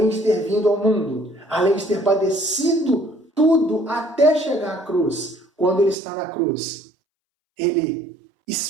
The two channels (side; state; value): left; drops out; at 6.0 s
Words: de ter vindo ao mundo, além de ter padecido tudo até chegar à cruz, quando ele está na cruz, ele